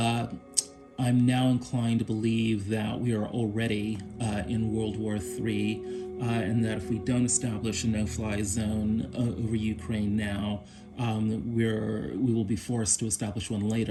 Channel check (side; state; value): both; identical; correlation 1.00